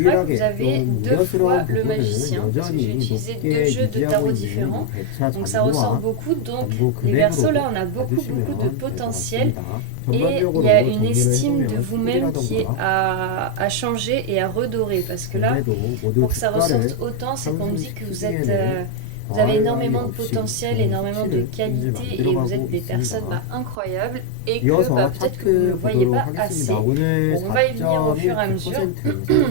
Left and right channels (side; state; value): both; different; correlation 0.01